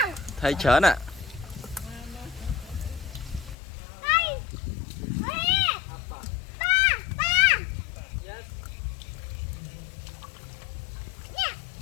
thấy chớn à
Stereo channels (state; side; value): drops out; right; at 3.6 s